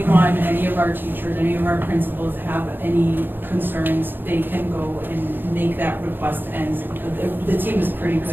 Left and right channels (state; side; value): late; left; 0.096 ms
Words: any of our teachers, any of our principals have any concerns, they can go and make that request, and the team is pretty